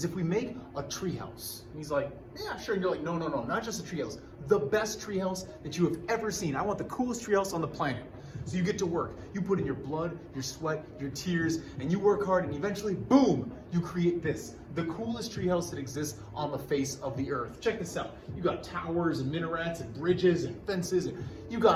if we make a treehouse. And he's like, yeah, sure. And you're like, no, not just a treehouse. The best treehouse that you have ever seen. I want the coolest treehouse on the planet. So you get to work. You put in your blood, your sweat, your tears, and you work hard, and eventually, boom, you create this. The coolest treehouse that exists on the face of the earth. Check this out. You got towers and minarets and bridges and fences, and you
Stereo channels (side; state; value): both; identical; correlation 1.00